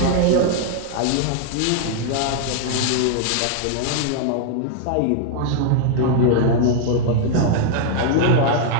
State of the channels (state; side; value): different; both; correlation -0.01